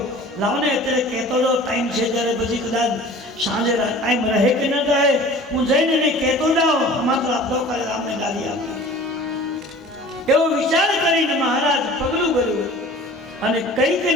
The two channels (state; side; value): normal; both; correlation 0.44